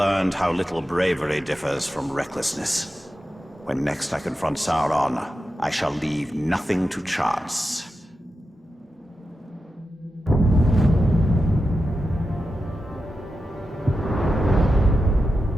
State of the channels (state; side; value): normal; both; correlation 0.90